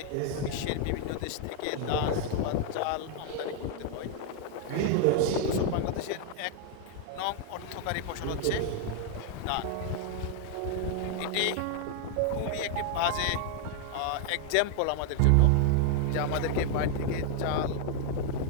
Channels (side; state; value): both; different; correlation 0.00